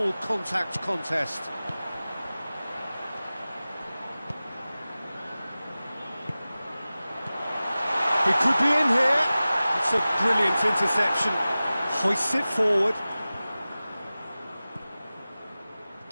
contact contest. He could be in here. It's a brilliant interception. Hoists it forward.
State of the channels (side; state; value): both; inverted; correlation -0.97